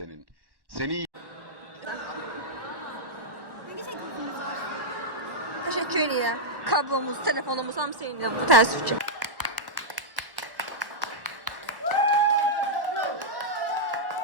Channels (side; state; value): left; late; 1.1 ms